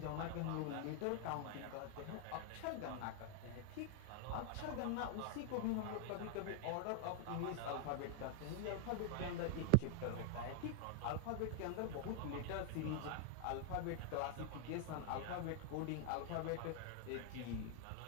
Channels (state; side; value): different; both; correlation 0.00